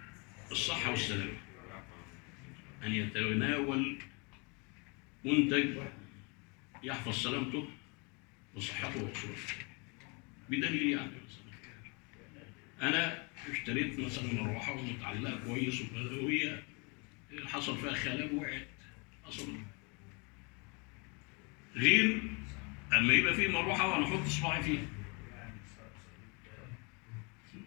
الصحة والسلامة أن يتناول منتج يحفظ سلامته وصحته وأصوله. بدليل يعني أنا اشتريت مثلا مروحة ومتعلقة كويس وهي حصل فيها خلل وقعت أصلا. غير أما يبقى فيه مروحة وأنا أحط صباعي فيها.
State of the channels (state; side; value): quieter; right; 31.8 dB